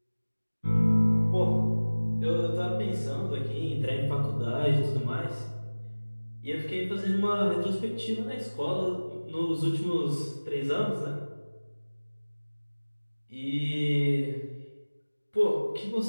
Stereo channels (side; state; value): both; inverted; correlation -1.00